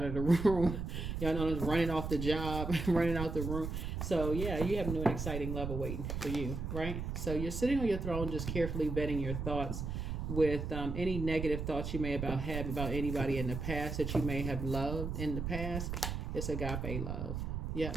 of the room. Y'all know, running off the job, running out the room. So yeah, you have new and exciting love awaiting for you, right? So you're sitting on your throne, just carefully vetting your thoughts with any negative thoughts you may have about anybody in the past that you may have loved in the past. It's agape love. Yeah.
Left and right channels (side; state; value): right; noise; rumble, 4 dB below the sound